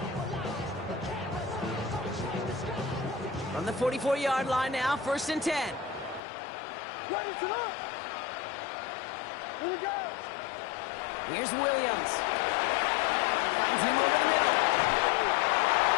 From the 44-yard line now, 1st and 10. Ready to up. Here we go. Here's Williams. Finds him over the middle.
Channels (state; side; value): drops out; right; at 6.2 s